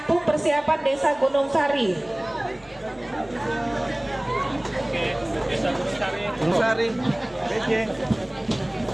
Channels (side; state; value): left; noise; hum, 27 dB below the sound